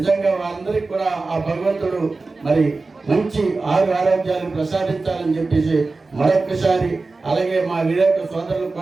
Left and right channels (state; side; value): quieter; left; 3.7 dB